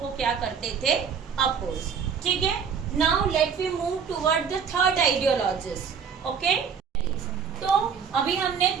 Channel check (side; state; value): left; quieter; 6.7 dB